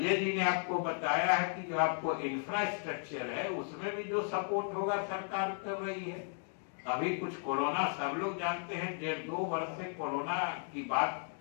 जी ने आपको बताया है कि जो आपको इंफ्रास्ट्रक्चर है उसमें भी जो सपोर्ट होगा सरकार कर रही है। अभी कुछ कोरोना सब लोग जानते हैं, 1.5-2 वर्ष से कोरोना की बात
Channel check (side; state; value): right; silent; 54 dB below the other